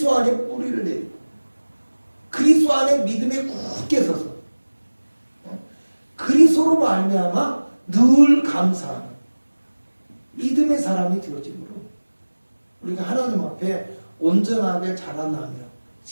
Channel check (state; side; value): inverted; both; correlation -1.00